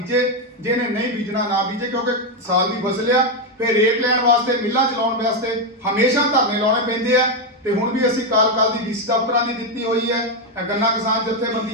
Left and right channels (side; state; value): both; normal; correlation 0.05